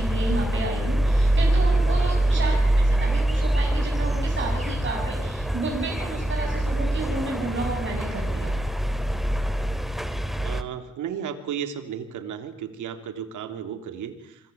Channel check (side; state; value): both; normal; correlation 0.86